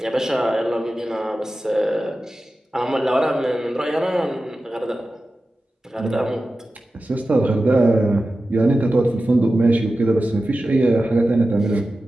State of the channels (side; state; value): both; normal; correlation 0.94